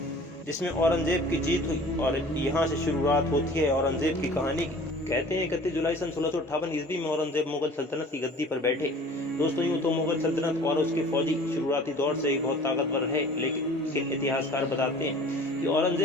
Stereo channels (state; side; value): normal; both; correlation 0.46